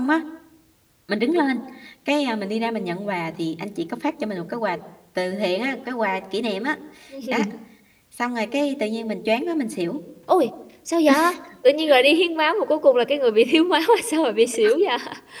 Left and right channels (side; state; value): both; identical; correlation 1.00